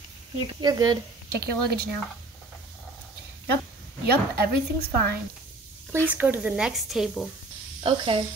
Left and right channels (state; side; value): quieter; left; 3.1 dB